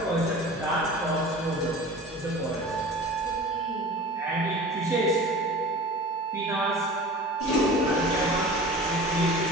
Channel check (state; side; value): normal; both; correlation 0.39